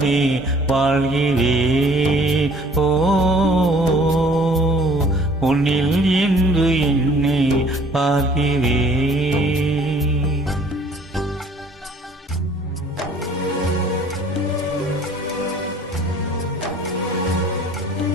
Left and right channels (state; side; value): normal; both; correlation 0.55